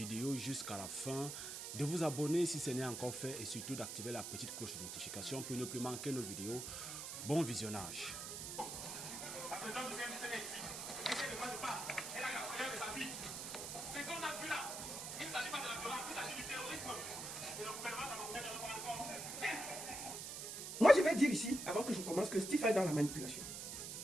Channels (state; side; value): noise; right; hiss, 6 dB below the sound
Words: jusqu'à la fin, de vous abonner si ce n'est encore fait et surtout d'activer la petite cloche de notification pour ne plus manquer nos vidéos. Bon visionnage. La présidente du CNC est ici. Elle ne demande pas. Elle a la prière de sa vie. Ce qu'on a vu là, il ne s'agit pas de la violence, il s'agit du terrorisme. Et le gouvernement camerounais ne le prend en compte. Moi, je vais dire ici, avant que je commence, que Stifa est dans la manipulation